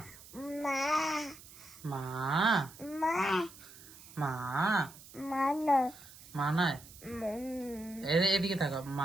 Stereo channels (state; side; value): noise; right; hiss, 19 dB below the sound